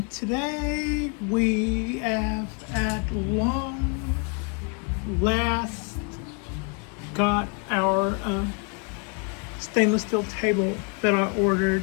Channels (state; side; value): quieter; right; 36.4 dB